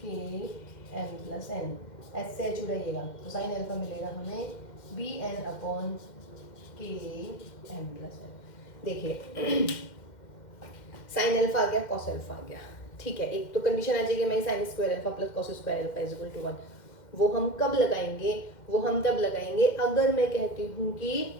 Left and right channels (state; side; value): late; right; 2.1 ms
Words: एम प्लस एन, एस से एच उड़ाइएगा, तो sin अल्फा मिलेगा हमें बी एन अपॉन के एम प्लस एन। देखिए sin अल्फा आ गया, cos अल्फा आ गया, ठीक है। एक तो कंडीशन आ जाएगी मैं sin square alpha plus cos square alpha is equal to 1। वो हम कब लगाएंगे, वो हम तब लगाएंगे अगर मैं कहती हूँ